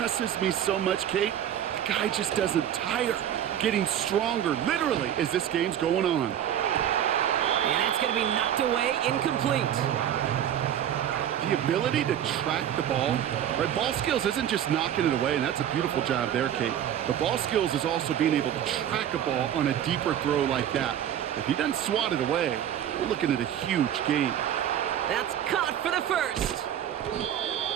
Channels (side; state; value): left; quieter; 10.3 dB